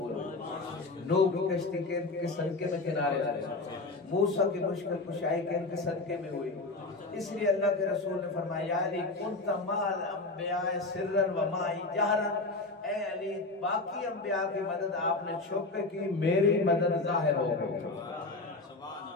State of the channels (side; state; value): right; quieter; 3.3 dB